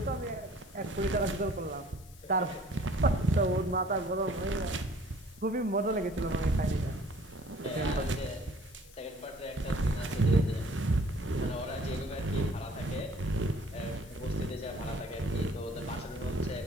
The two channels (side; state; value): left; noise; hiss, 22 dB below the sound